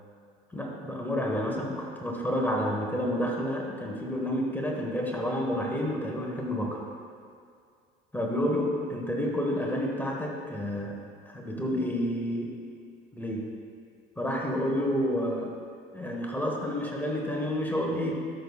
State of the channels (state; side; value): normal; both; correlation 0.61